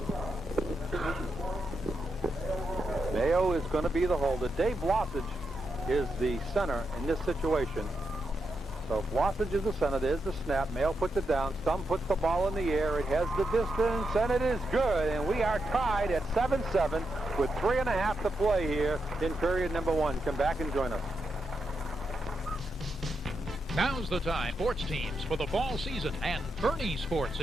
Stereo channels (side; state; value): both; normal; correlation 0.84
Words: Mayo is going to be the holder. Dave Blossage is the center in this situation. So Blossage is the center. There's the snap. Mayo puts it down. Stum puts the ball in the air. It has the distance, and it is good. And we are tied at 7-7 with 3.5 to play here in period number 1. Come back and join us. Now's the time. Sports teams for the fall season, and Bernie Sports